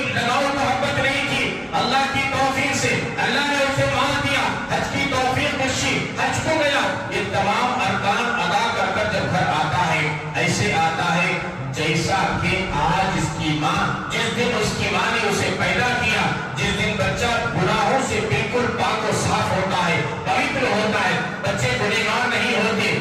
لگاؤ محبت نہیں تھی، اللہ کی توفیق سے اللہ نے اسے مال دیا، حج کی توفیق بخشی، حج کو گیا، یہ تمام ارکان ادا کر کر جب گھر آتا ہے، ایسے آتا ہے جیسا کہ آج اس کی ماں، جس دن اس کی ماں نے اسے پیدا کیا، جس دن بچہ گناہوں سے بالکل پاک و صاف ہوتا ہے، پوتر ہوتا ہے، بچے گنہگار نہیں ہوتے،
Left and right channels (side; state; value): both; identical; correlation 1.00